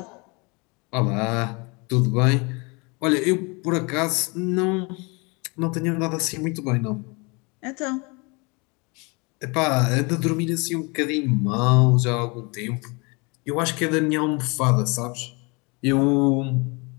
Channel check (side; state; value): right; quieter; 29.4 dB